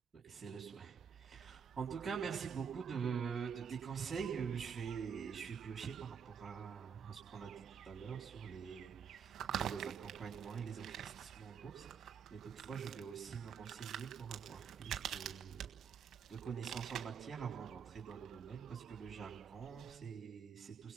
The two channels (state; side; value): quieter; left; 7.0 dB